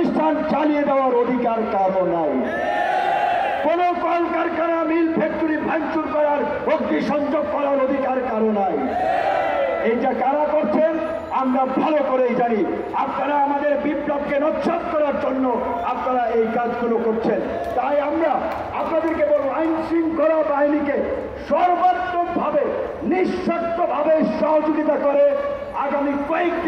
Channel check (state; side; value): identical; both; correlation 1.00